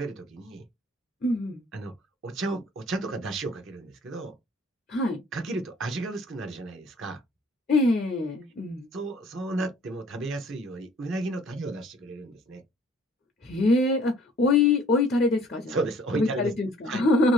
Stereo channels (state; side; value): normal; both; correlation 0.56